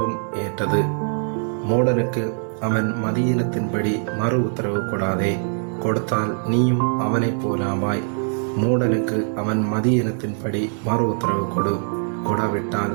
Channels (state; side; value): silent; left; 56 dB below the other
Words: ஏற்றது. மூடனுக்கு அவன் மதியினத்தின்படி மறு உத்தரவு கொடாதே, கொடுத்தால் நீயும் அவனைப் போலாவாய். மூடனுக்கு அவன் மதியினத்தின்படி மறு உத்தரவு கொடாவிட்டால்